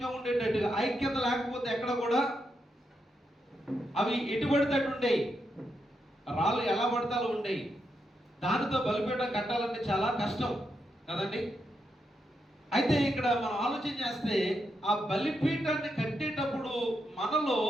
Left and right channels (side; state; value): both; normal; correlation 0.83